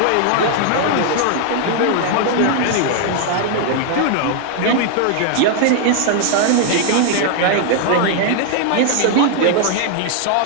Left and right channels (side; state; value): both; different; correlation 0.00